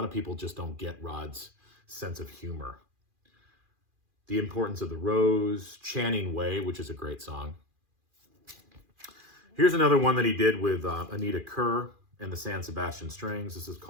of people just don't get Rod's sense of humor. The Importance of the Rose, Channing Way, which is a great song. Here's another one that he did with Anita Kerr and the San Sebastian Strings. This is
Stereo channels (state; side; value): late; left; 2.4 ms